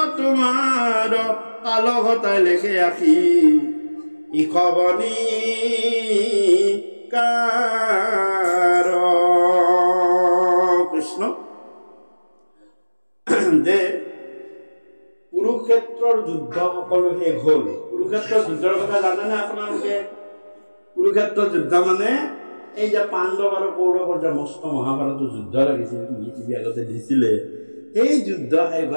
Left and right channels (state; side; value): inverted; both; correlation -1.00